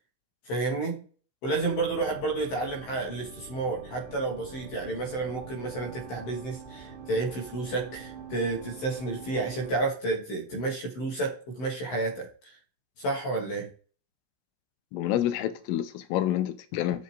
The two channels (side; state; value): right; late; 16 ms